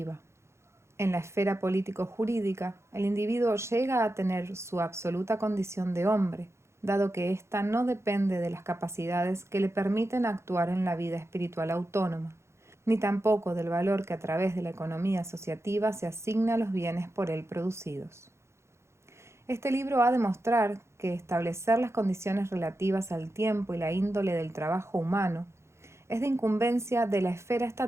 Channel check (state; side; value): late; left; 0.13 ms